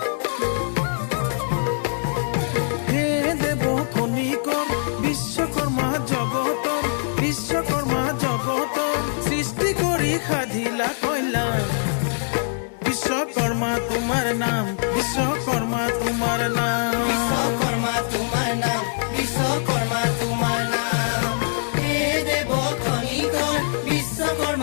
হে দেৱ খনিকৰ বিশ্বকৰ্মা জগতৰ, বিশ্বকৰ্মা জগতৰ সৃষ্টি কৰি সাধিলা কল্যাণ। বিশ্বকৰ্মা তোমাৰ নাম, বিশ্বকৰ্মা তোমাৰ নাম। বিশ্বকৰ্মা তোমাৰ নাম, বিশ্বকৰ্মা তোমাৰ নাম। হে দেৱ খনিকৰ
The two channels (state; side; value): silent; right; 63 dB below the other